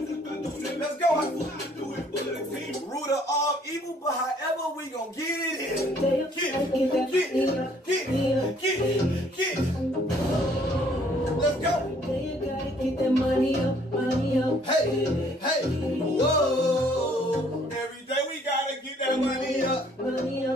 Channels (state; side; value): normal; both; correlation 0.61